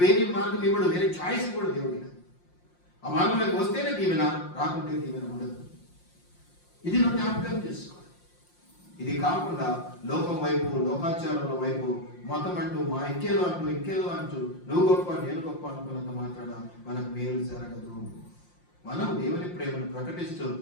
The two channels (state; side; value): late; right; 5.7 ms